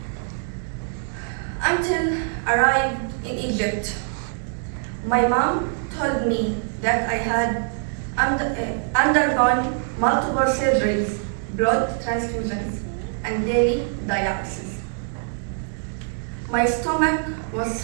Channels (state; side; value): silent; left; 63 dB below the other